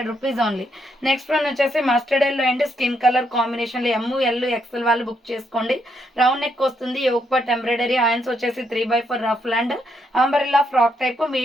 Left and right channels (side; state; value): both; normal; correlation 0.76